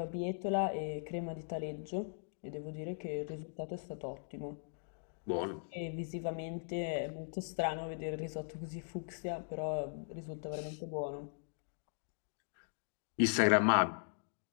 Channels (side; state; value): right; silent; digital silence